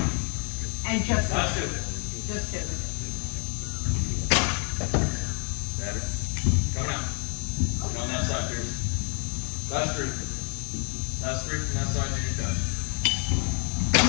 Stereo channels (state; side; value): quieter; right; 37.7 dB